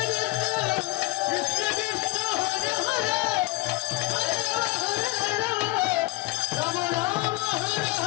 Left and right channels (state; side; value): quieter; right; 21.4 dB